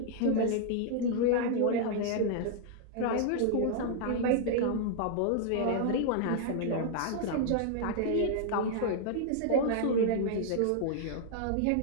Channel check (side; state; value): both; different; correlation -0.01